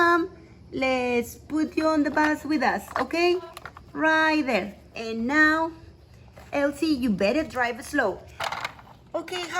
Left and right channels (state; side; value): identical; both; correlation 1.00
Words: Let's put you on the bus with us, okay? Right there. And now, Elsie, you better drive slow. Okay,